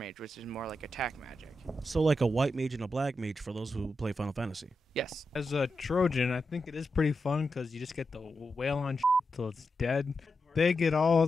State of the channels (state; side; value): normal; both; correlation 0.88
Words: which is more like attack magic. So like a white mage and a black mage for those who play Final Fantasy. Yes. As a Trojan, I think it is pretty fun because you just get to wail on till it's dead. They get all